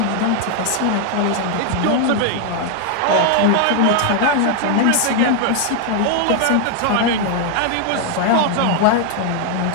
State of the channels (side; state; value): both; different; correlation 0.01